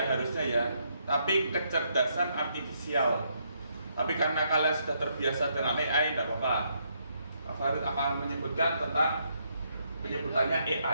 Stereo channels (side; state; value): both; inverted; correlation -0.75